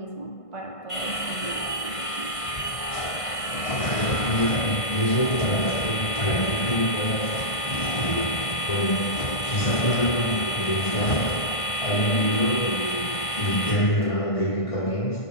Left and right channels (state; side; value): late; right; 1.5 ms